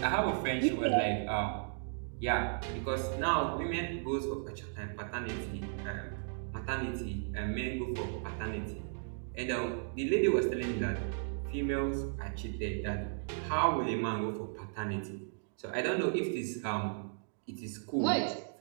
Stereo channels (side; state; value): left; silent; digital silence